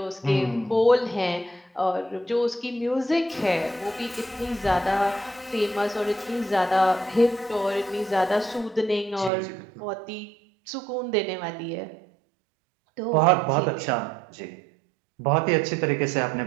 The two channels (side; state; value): left; drops out; at 9.3 s